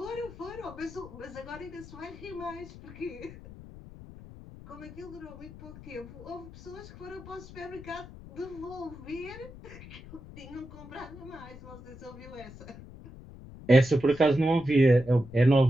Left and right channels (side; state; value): left; noise; rumble, 16 dB below the sound